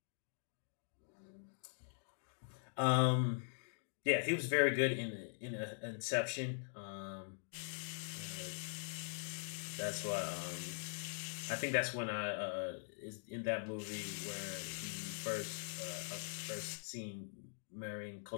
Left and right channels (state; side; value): silent; right; digital silence